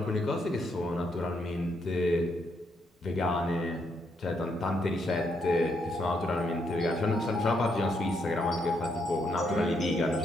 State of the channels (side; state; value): both; normal; correlation 0.76